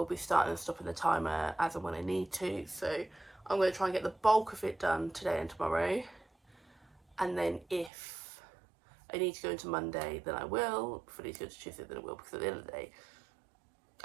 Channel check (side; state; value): left; drops out; at 7.9 s